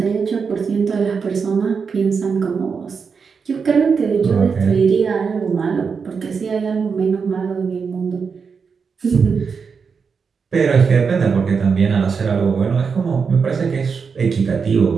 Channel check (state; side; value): quieter; left; 5.7 dB